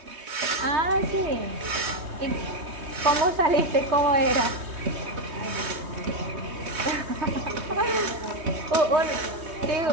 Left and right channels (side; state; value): left; late; 3.2 ms